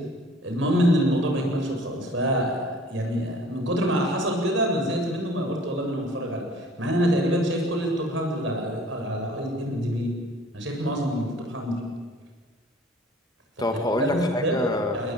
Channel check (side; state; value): both; normal; correlation 0.51